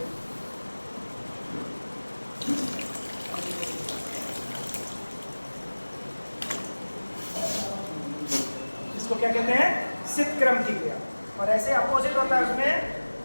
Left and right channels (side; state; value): both; inverted; correlation -1.00